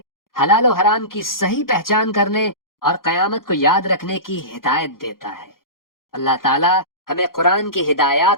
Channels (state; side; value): late; right; 0.91 ms